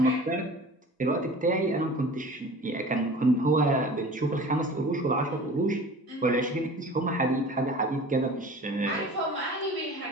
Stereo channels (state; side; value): normal; both; correlation 0.41